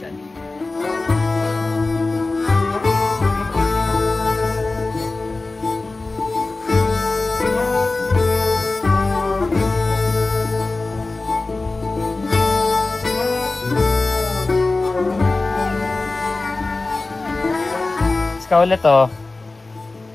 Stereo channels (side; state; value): right; quieter; 3.3 dB